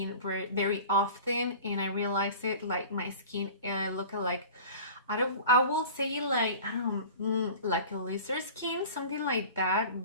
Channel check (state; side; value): inverted; both; correlation -0.40